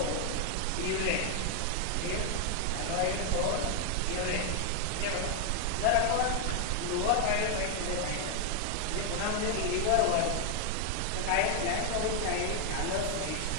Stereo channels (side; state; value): both; different; correlation 0.00